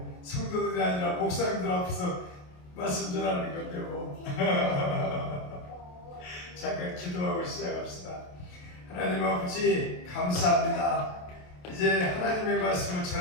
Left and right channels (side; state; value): right; late; 28 ms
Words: 성도들이 아니라 목사님들 앞에서 말씀 전하는 건데 뭐 잠깐 기도하고 시작합시다. 하나님 아버지 감사합니다. 이제 하나님의 말씀을